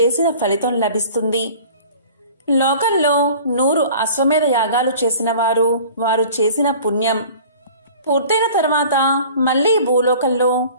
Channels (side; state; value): both; inverted; correlation -0.45